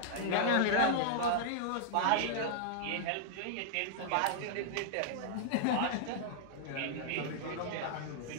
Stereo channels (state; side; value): different; both; correlation -0.01